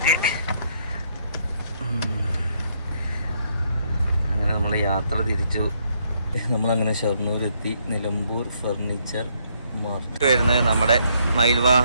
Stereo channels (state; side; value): inverted; both; correlation -0.72